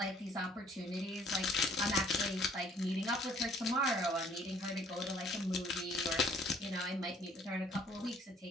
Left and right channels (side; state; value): both; normal; correlation 0.59